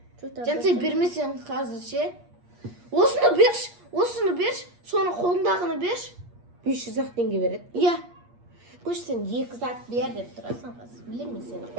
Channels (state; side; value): late; left; 8.5 ms